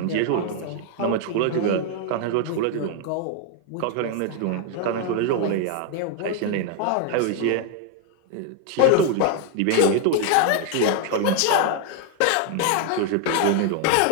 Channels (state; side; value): different; both; correlation 0.01